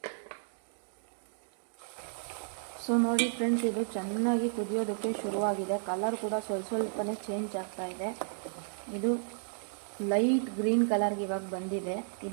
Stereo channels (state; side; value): silent; left; digital silence